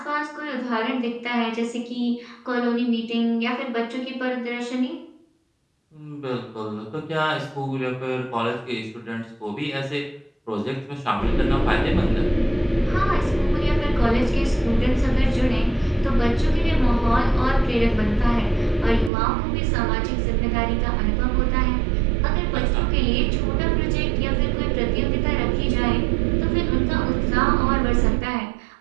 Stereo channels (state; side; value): drops out; left; at 19.1 s